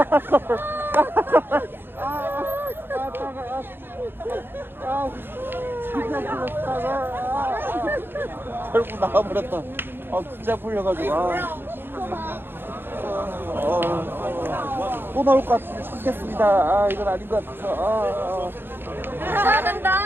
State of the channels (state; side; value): late; left; 0.10 ms